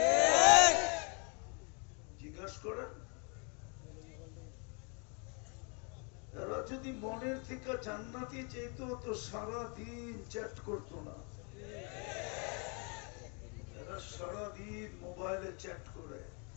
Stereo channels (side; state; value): right; quieter; 35.7 dB